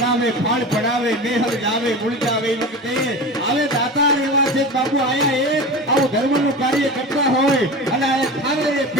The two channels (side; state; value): both; normal; correlation 0.30